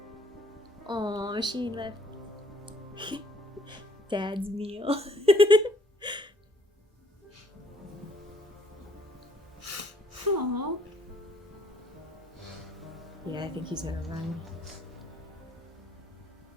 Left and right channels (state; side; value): normal; both; correlation 0.63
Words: Oh, she left Dad's meal. Aww. Yeah, I think he's gonna run.